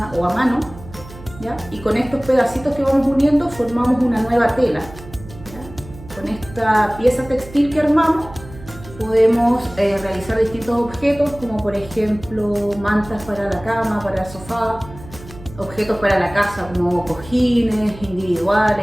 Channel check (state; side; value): noise; right; hum, 17 dB below the sound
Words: o a mano. ¿Ya? Y con estos pedacitos que vamos uniendo formamos una nueva tela. ¿Ya? Con esta pieza textil que armamos podemos realizar distintos objetos, como por ejemplo mantas para la cama, para el sofá, objetos para la casa como cojines